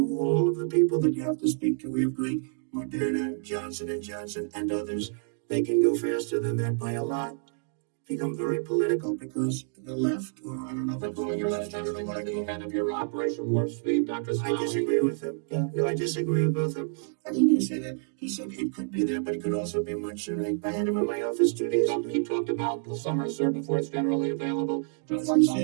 all of the people that you have to speak to. We have great Moderna, Johnson & Johnson, and others. They can go faster than that by a lot. become very political because the left, or I don't know if I'm calling it left, Generally, when the head of your Operation Warp Speed, Dr. I Smiley. disagree with him. Yeah, no, I disagree with both of them. I think he said it could be there, but it could also be much sooner. I had him in my office 2 days ago. He talked about the summer, sir, before it's generally available. He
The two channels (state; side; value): silent; left; 59 dB below the other